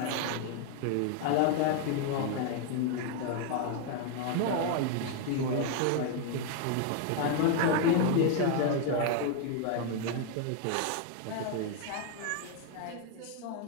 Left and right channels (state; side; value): different; both; correlation 0.00